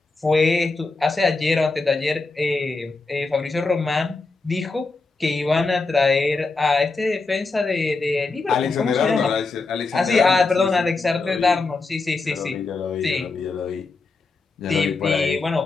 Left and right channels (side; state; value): right; quieter; 3.8 dB